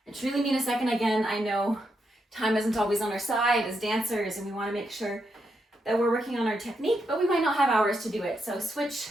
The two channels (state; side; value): normal; both; correlation 0.82